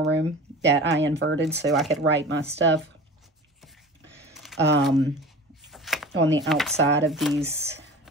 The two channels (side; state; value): both; normal; correlation 0.38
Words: Room that I inverted so I could write my stuff on the outside of these